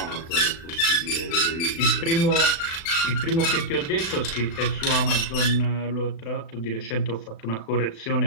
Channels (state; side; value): late; right; 36 ms